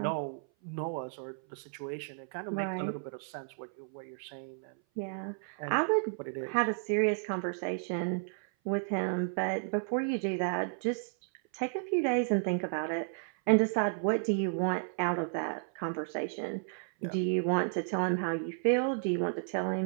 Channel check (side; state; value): left; silent; 56 dB below the other